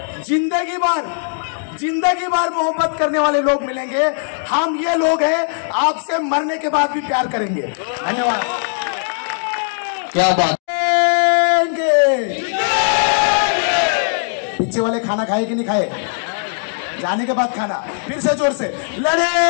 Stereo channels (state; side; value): silent; right; digital silence